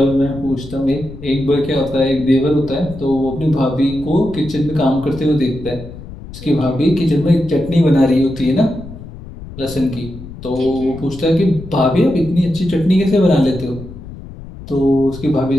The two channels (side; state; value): left; noise; rumble, 14 dB below the sound